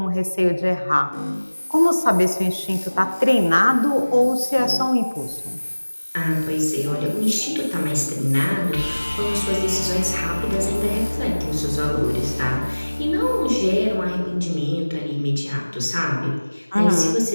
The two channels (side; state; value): both; inverted; correlation -1.00